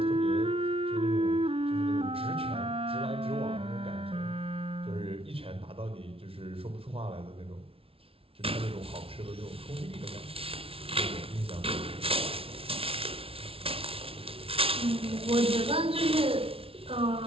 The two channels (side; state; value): left; late; 0.27 ms